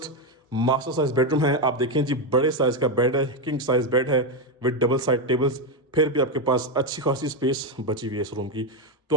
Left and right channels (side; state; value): both; normal; correlation 0.07